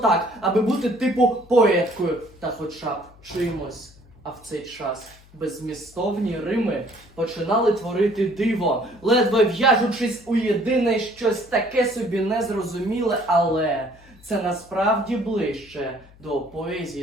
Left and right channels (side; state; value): left; noise; hum, 25 dB below the sound